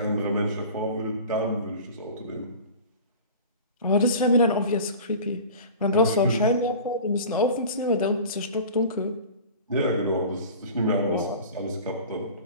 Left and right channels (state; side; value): inverted; both; correlation -0.38